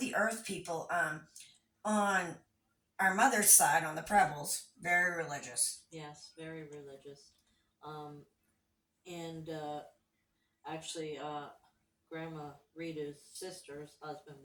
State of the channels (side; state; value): both; identical; correlation 1.00